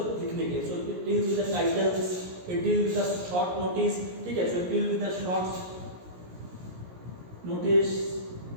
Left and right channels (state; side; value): late; left; 17 ms